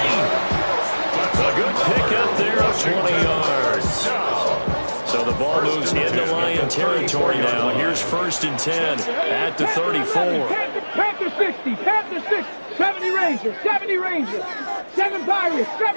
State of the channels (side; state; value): both; inverted; correlation -1.00